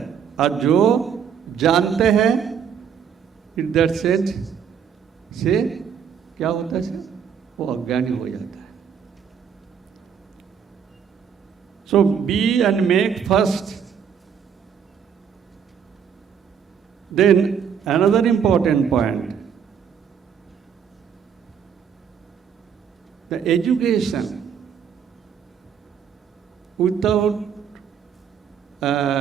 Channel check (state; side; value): quieter; left; 7.6 dB